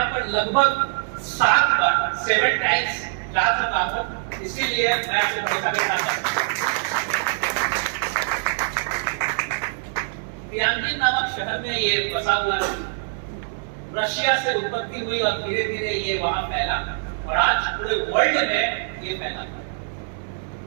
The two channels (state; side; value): silent; left; digital silence